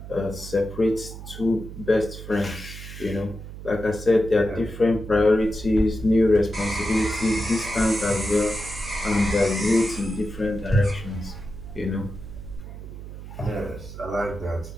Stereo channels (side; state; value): right; noise; hum, 12 dB below the sound